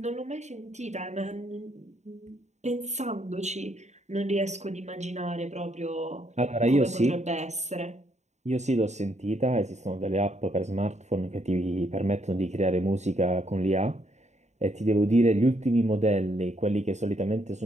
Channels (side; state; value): left; late; 0.33 ms